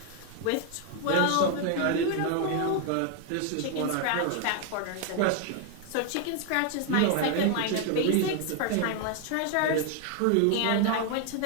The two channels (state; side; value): different; both; correlation 0.01